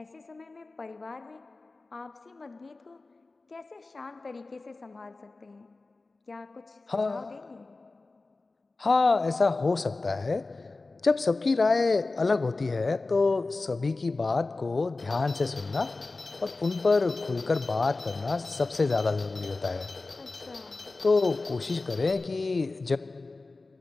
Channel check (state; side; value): quieter; right; 3.5 dB